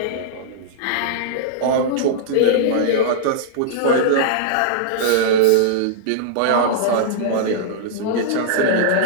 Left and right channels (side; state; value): both; different; correlation -0.02